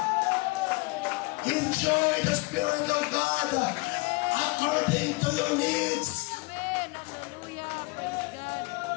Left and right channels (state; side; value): quieter; right; 25.9 dB